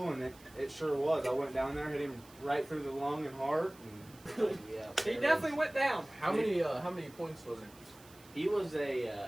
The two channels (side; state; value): right; noise; hiss, 23 dB below the sound